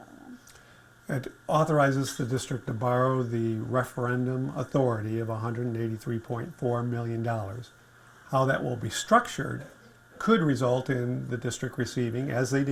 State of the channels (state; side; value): identical; both; correlation 1.00